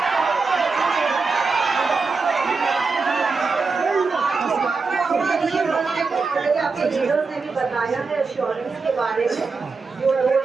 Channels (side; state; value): left; quieter; 4.5 dB